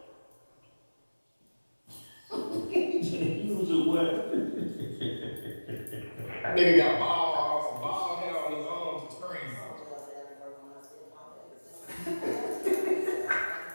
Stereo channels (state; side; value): inverted; both; correlation -1.00